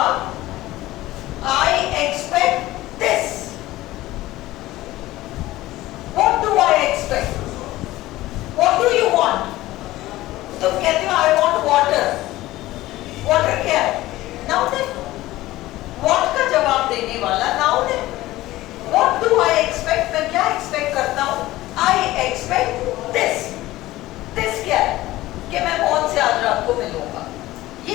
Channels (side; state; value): right; quieter; 17.0 dB